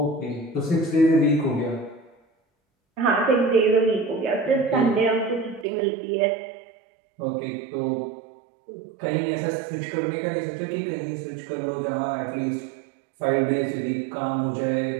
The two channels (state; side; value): drops out; left; at 5.7 s